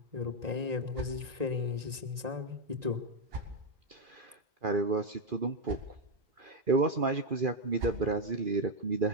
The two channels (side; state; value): left; late; 1.9 ms